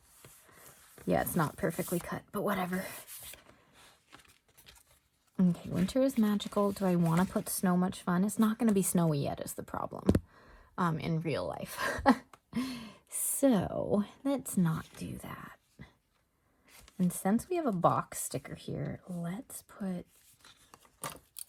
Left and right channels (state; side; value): identical; both; correlation 1.00